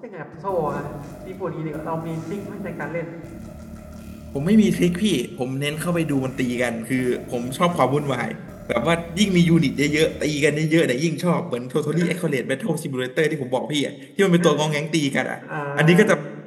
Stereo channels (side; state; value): both; identical; correlation 1.00